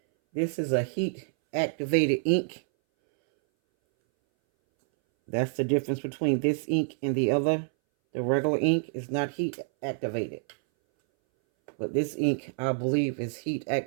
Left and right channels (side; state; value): left; silent; 59 dB below the other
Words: This is a heat activated ink. That's the difference between this ink and the other. The regular ink is not heat activated. But this ink, I believe, is heat